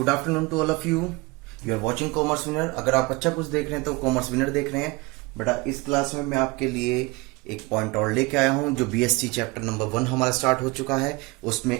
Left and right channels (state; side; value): quieter; left; 24.3 dB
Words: afternoon to all of you. You are watching Commerce Winner. अगर आप अच्छा कुछ देख रहे हैं तो कॉमर्स विनर देख रहे हैं। बेटा, इस क्लास में मैं आपके लिए एक पॉइंट और लेके आया हूं। जो बीएससी चैप्टर नंबर 1 हमारा स्टार्ट हो चुका है,